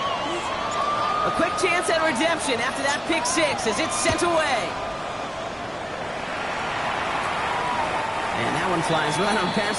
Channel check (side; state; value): both; identical; correlation 1.00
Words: A quick chance at redemption after that pick six as it's sent away. And that one flies right on